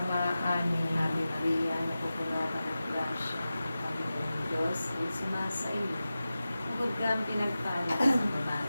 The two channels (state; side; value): inverted; both; correlation -0.94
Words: Amen. Ave Maria, napupuno ka ng grasya, ang Panginoong Diyos ay sumasa iyo. Bukod kang pinagpala sa